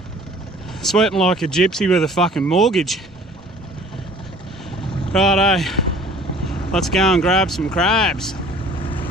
Sweating like a gypsy with a fucking mortgage. Righto, let's go and grab some crabs.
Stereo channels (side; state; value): both; normal; correlation 0.49